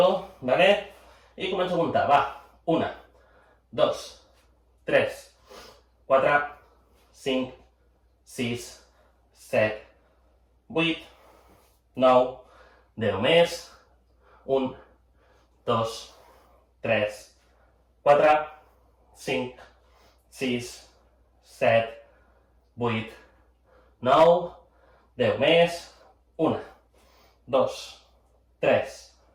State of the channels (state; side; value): identical; both; correlation 1.00